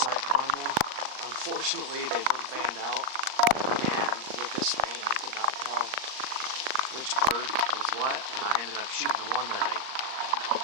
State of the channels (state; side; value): late; left; 38 ms